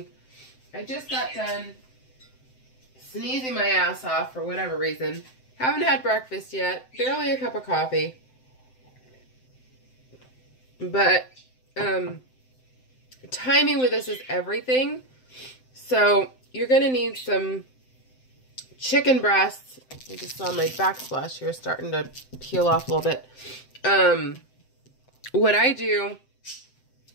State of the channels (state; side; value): late; right; 7.8 ms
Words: I just got done sneezing my ass off for whatever reason. Haven't had breakfast yet, barely a cup of coffee. But timing with this is everything. So you're going to need some chicken breasts. I just saw my backsplash here starting to peel off a little bit. What I do